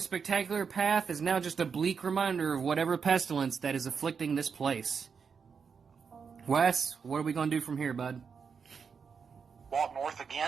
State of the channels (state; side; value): quieter; left; 6.0 dB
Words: spectacular path is now just a bleak reminder of whatever pestilence that is afflicting this place. Wes, what are we going to do from here, bud? Walk north